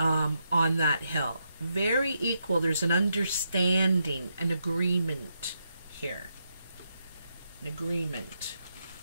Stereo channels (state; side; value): inverted; both; correlation -0.82